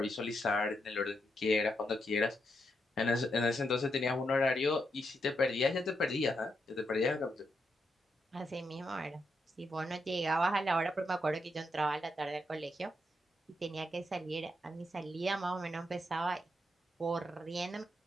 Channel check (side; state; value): both; normal; correlation 0.82